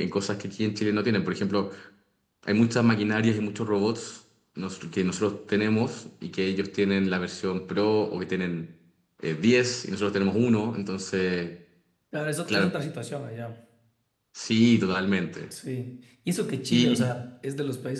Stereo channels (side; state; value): both; identical; correlation 1.00